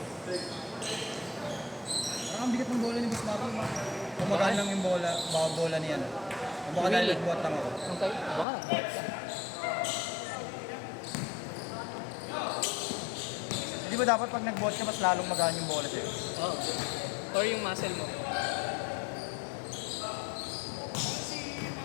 Parang ang bigat ng bola ni Boss Marlon. Kumagaan lang yung bola, baka bola niyan. O baka dahil nagbuhat lang ako. Okay, baka nag-out ka. Di ba dapat pag nagbuhat ka, mas lalong magaan yung bola sa'yo? Oo. Or yung muscle mo.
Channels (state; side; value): drops out; right; at 8.5 s